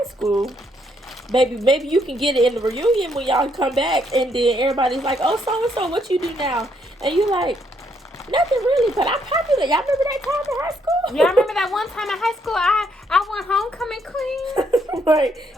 school, maybe you can get it in the reunion when y'all come back, and then everybody's like, oh, so what you do now? And you like, nothing really, but I'm popular. Y'all remember that time in high school? Yeah, I remember that one time in high school. I won homecoming queen. Right.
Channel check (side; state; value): both; normal; correlation 0.73